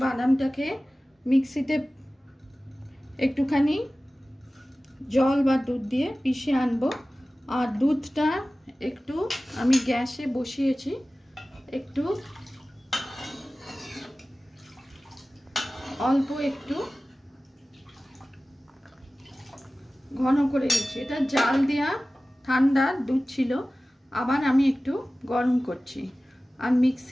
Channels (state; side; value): normal; both; correlation 0.97